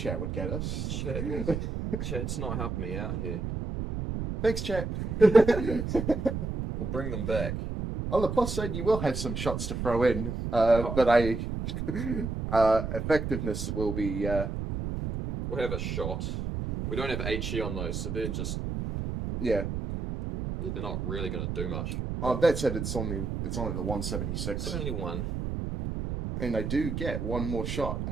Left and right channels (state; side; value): noise; right; rumble, 3 dB below the sound